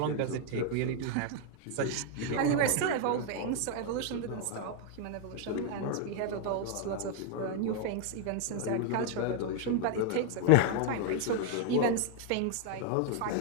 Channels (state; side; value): different; both; correlation 0.00